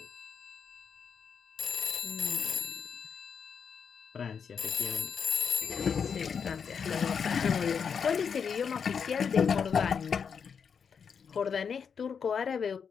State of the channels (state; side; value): quieter; right; 6.6 dB